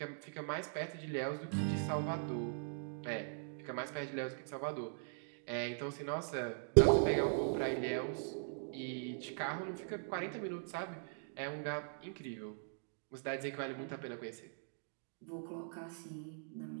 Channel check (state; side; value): silent; left; digital silence